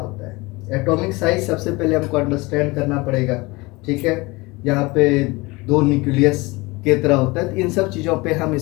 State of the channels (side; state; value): right; quieter; 23.6 dB